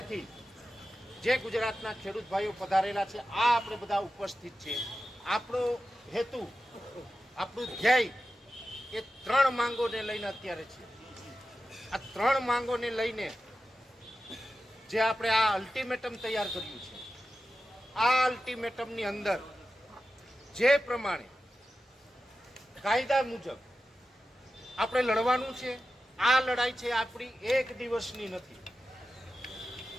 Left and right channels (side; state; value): both; normal; correlation 0.92